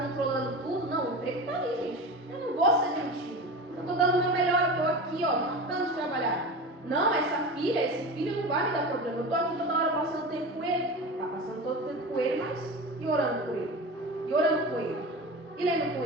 tudo. Não, o emprego está ali, gente. Eu não vou ser demitido. Eu estou dando o meu melhor, eu estou aqui, ó, matando de trabalhar. Não, essa filha, esse filho não vai me dar problema. Eu estou aqui toda hora passando tempo com ele. Está passando todo o tempo com ele, mas e orando com ele? E orando com ele? E lendo com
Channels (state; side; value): normal; both; correlation 0.29